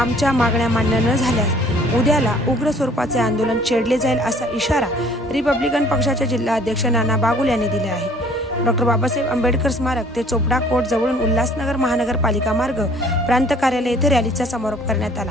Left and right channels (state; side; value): normal; both; correlation 0.55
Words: मागण्या मान्य न झाल्यास उद्याला उग्र स्वरूपाचे आंदोलन छेडले जाईल असा इशारा रिपब्लिकन पक्षाचे जिल्हा अध्यक्ष नाना बागुल यांनी दिला आहे। डॉक्टर बाबासाहेब आंबेडकर स्मारक ते चोपडा कोर्ट जवळून उल्हासनगर महानगरपालिका मार्ग प्रांत कार्यालय येथे रॅलीचा समारोप करण्यात आला।